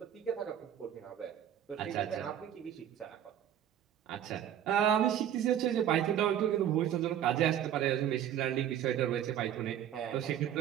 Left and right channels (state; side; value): quieter; left; 10.3 dB